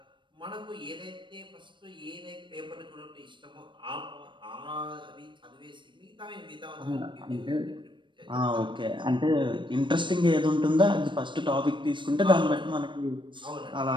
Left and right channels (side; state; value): left; late; 0.23 ms